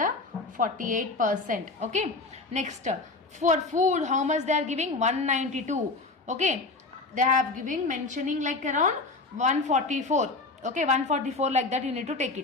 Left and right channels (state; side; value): quieter; right; 3.5 dB